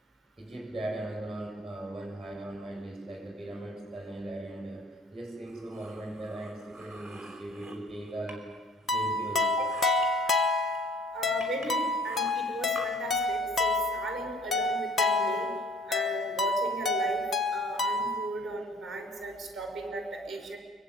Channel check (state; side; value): normal; both; correlation 0.53